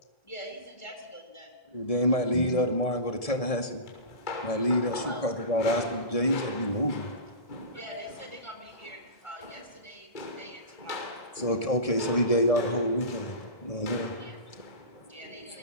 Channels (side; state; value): right; late; 1.7 ms